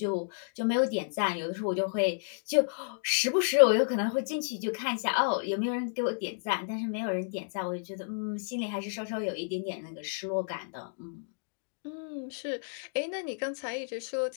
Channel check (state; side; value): silent; right; digital silence